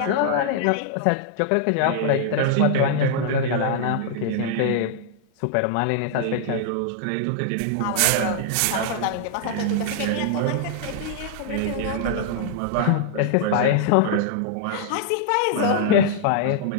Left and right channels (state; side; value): different; both; correlation -0.01